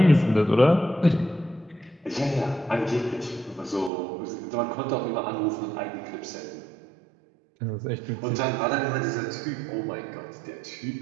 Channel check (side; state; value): left; drops out; at 3.9 s